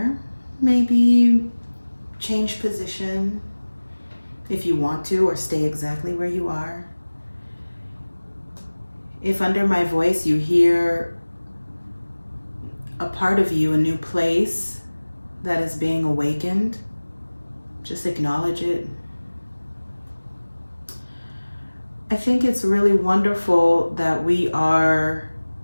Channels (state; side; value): inverted; both; correlation -1.00